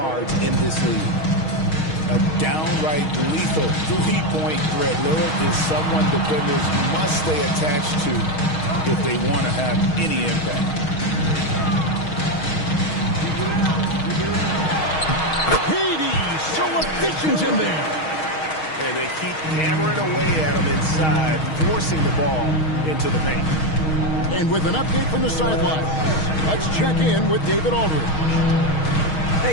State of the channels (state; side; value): late; right; 6.4 ms